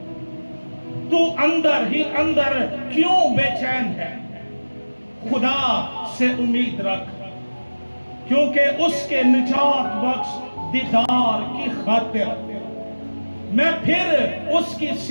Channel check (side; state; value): both; inverted; correlation -1.00